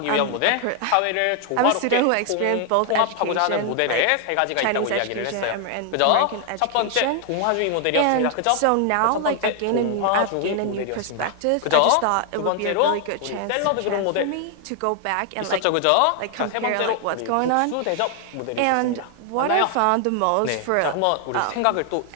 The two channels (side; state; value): both; different; correlation 0.00